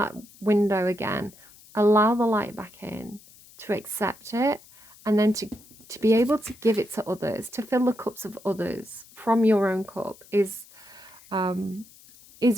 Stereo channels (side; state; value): left; noise; hiss, 24 dB below the sound